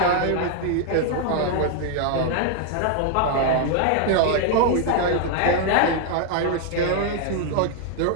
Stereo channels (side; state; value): both; different; correlation 0.00